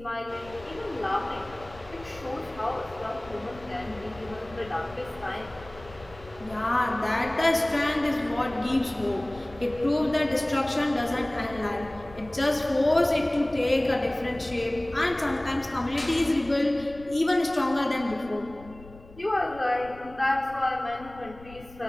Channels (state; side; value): noise; left; rumble, 20 dB below the sound